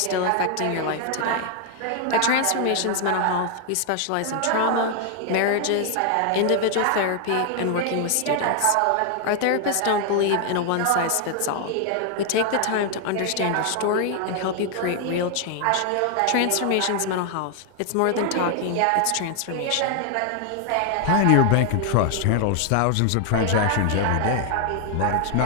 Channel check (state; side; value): different; both; correlation 0.00